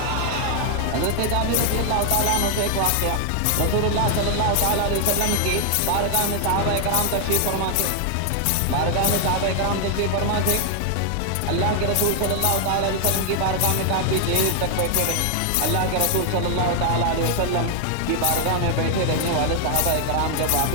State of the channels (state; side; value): different; both; correlation 0.00